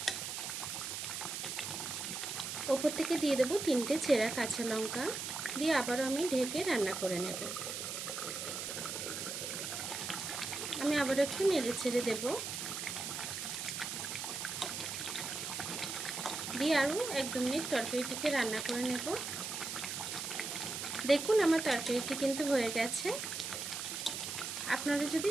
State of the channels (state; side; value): noise; right; hiss, 4 dB below the sound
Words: ওপর থেকে দিয়ে দেব 3টে চেরা কাঁচা লঙ্কা, দিয়ে আবারও আমি ঢেকে রান্না করে নেব। আমি আবারও একটু নেড়ে ছেড়ে দেব, দিয়ে আরও 1-2 মিনিট তরকারিটিকে রান্না করে নেব। দেখুন আমার তরকারিটি কিন্তু হয়ে গেছে। আপনারা যদি